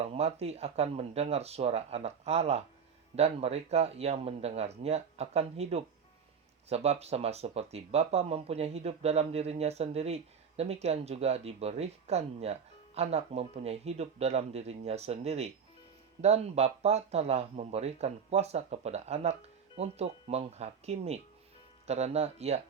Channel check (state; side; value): quieter; left; 6.7 dB